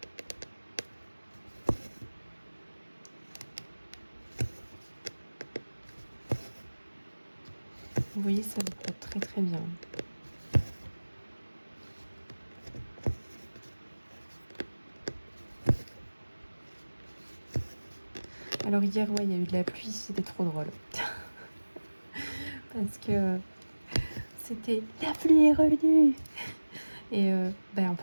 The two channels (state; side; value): inverted; both; correlation -1.00